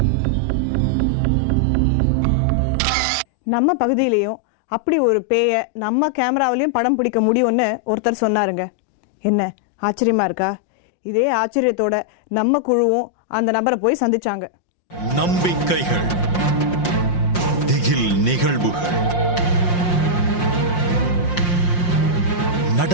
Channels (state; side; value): late; right; 5.6 ms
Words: நம்ம பகுதியிலையும் அப்படி ஒரு பேய நம்ம கேமராவிலையும் படம் பிடிக்க முடியும்னு ஒருத்தர் சொன்னாருங்க. என்ன ஆச்சரியமா இருக்கா? இதே ஆச்சரியத்தோட நம்ம குழுவும் அந்த நபரை போய் சந்திச்சாங்க. நம்பிக்கைகள், திகில் நிகழ்வுகள்,